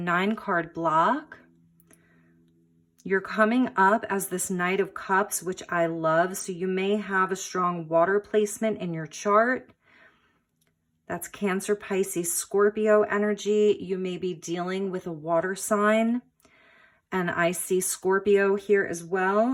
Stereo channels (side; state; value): both; identical; correlation 1.00